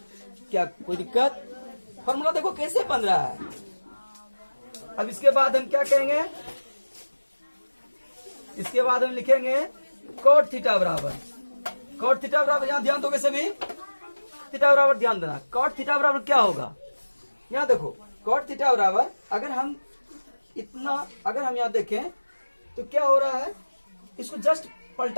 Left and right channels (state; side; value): inverted; both; correlation -1.00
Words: क्या कोई दिक्कत, फॉर्मूला देखो कैसे बन रहा है। अब इसके बाद हम क्या कहेंगे, इसके बाद हम लिखेंगे cot थीटा बराबर यहाँ ध्यान दोगे सभी, थीटा बराबर ध्यान देना, cot थीटा बराबर क्या होगा, यहाँ देखो cot थीटा बराबर अगर हम यहाँ देखें तो क्या हो रहा है, इसको जस्ट